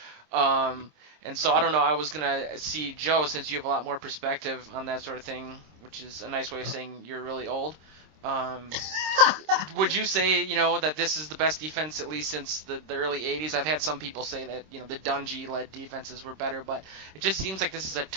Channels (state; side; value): late; left; 26 ms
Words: And so I don't know, I was going to see Joe, since you have a lot more perspective on that sort of thing, which is a nice way of saying you're really old. Would you say, that this is the best defense at least since the early 80s? I've had some people say that, the Dungy-led defenses were better, but it just seems like this is a